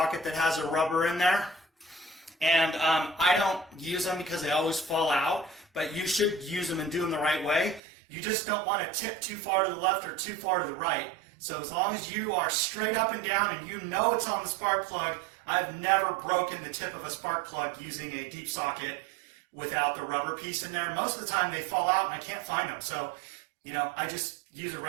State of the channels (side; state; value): left; drops out; at 7.8 s